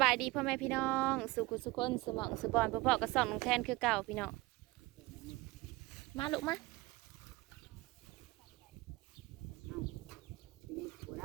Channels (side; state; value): left; quieter; 21.3 dB